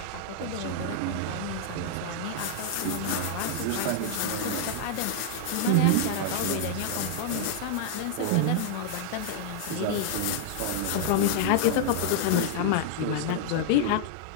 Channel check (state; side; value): different; both; correlation -0.01